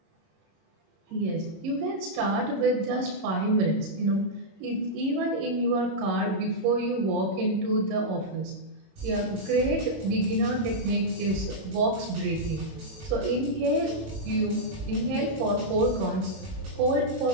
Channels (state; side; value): late; left; 26 ms